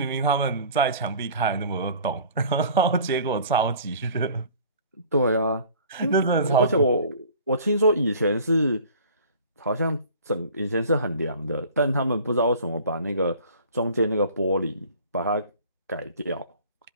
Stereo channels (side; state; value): both; inverted; correlation -0.47